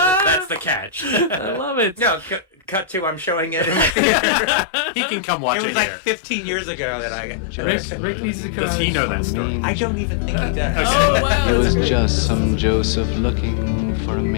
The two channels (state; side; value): drops out; right; at 3.9 s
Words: That's the catch. I love it. No, cut to I'm showing it. He can come watch It it, was like here. 15 years ago that I got. Rick needs to come. Does he know that story? I don't even think he does. Oh, wow. It was just some Joseph looking for a